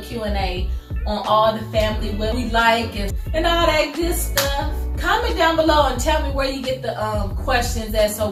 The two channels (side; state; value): both; identical; correlation 1.00